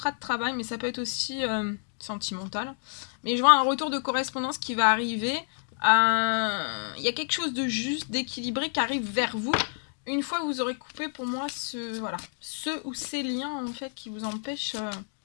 de travail, mais ça peut être aussi sentimental. Mais je vois un retour de correspondance qui va arriver. Il y a quelque chose de juste, d'équilibré qui arrive vers vous. Une fois que vous aurez coupé pour moi ce ou ces liens en fait qui vous empêchent.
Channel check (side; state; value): right; silent; digital silence